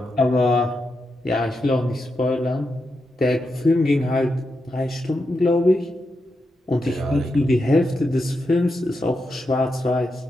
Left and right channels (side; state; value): both; normal; correlation 0.86